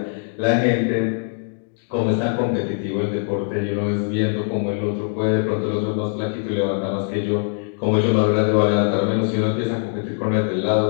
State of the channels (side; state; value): right; silent; digital silence